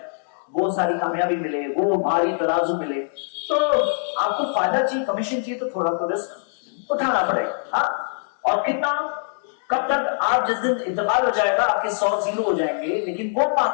وہ ساری کامیابی ملے، وہ بھاری ترازو ملے. تو آپ کو فائدہ چاہیے، کمیشن چاہیے، تو تھوڑا تو رسک اٹھانا پڑے گا. ہاں اور کتنا؟ کب تک؟ آپ جس دن انتقال ہو جائے گا آپ کے 100 زیرو ہو جائیں گے، لیکن وہ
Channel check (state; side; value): silent; right; digital silence